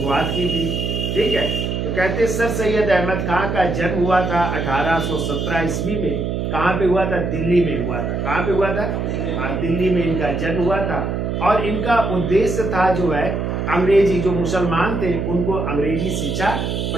की थी। ठीक है। तो कहते हैं सर सैयद अहमद खान का जन्म हुआ था 1817 ईस्वी में। कहाँ पे हुआ था? दिल्ली में हुआ था। कहाँ पे हुआ था? दिल्ली में इनका जन्म हुआ था। और इनका उद्देश्य था जो है अंग्रेजी, जो मुसलमान थे उनको अंग्रेजी शिक्षा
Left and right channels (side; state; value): right; noise; hum, 2 dB below the sound